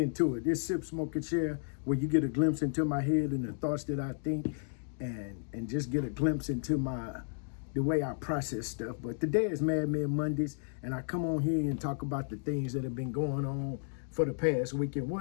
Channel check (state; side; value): silent; right; digital silence